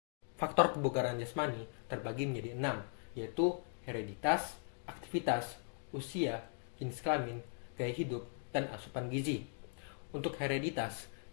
Faktor kebugaran jasmani terbagi menjadi 6, yaitu hereditas, aktivitas, usia, jenis kelamin, gaya hidup, dan asupan gizi. Untuk hereditas,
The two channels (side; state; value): right; silent; 52 dB below the other